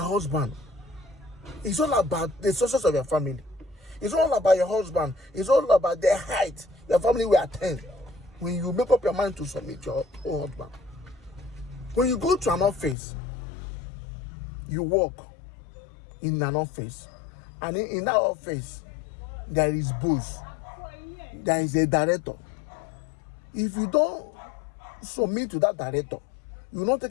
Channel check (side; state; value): right; drops out; at 13.0 s